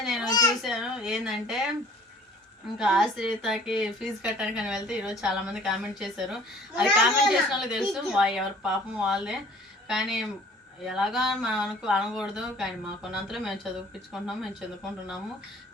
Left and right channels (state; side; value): normal; both; correlation 0.52